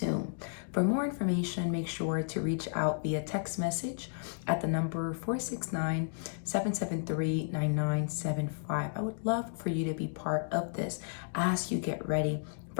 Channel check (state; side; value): silent; right; digital silence